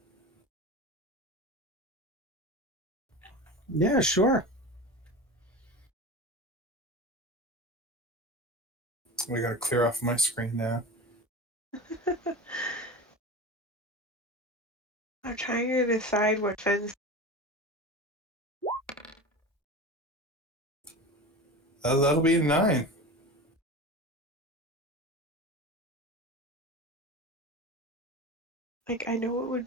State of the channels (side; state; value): both; normal; correlation 0.30